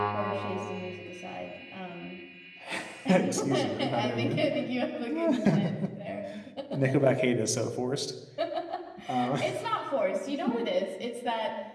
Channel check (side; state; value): both; identical; correlation 1.00